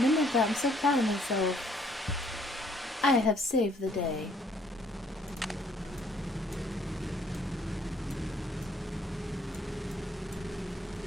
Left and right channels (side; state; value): both; normal; correlation 0.64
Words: that. I'm so proud of myself. I have saved the day.